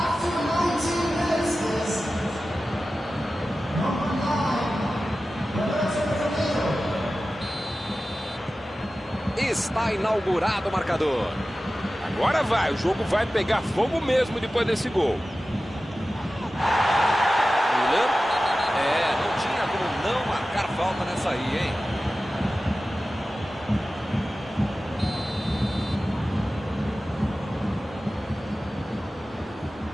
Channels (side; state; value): both; normal; correlation 0.95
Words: Está inaugurado o marcador. Agora vai, o jogo vai pegar fogo mesmo depois desse gol. Milan. Não tinha como não marcar falta nessa aí, hein?